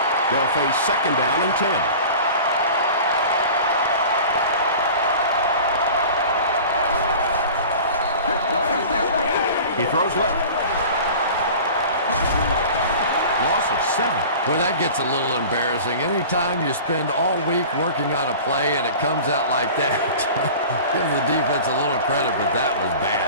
They'll face second down and 10. He throws left. Loss of 7. Boy, that gets a little embarrassing. Anytime you spend all week working on a play and it comes out like that, give the defense a little credit, but that was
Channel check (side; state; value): both; inverted; correlation -0.39